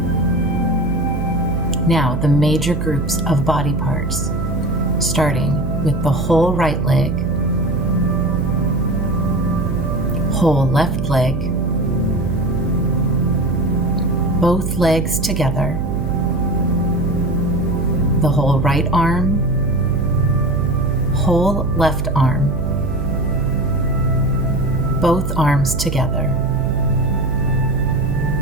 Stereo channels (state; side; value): noise; right; hum, 3 dB below the sound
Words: Now, the major groups of body parts, starting with the whole right leg, whole left leg, both legs together, the whole right arm, whole left arm, both arms together,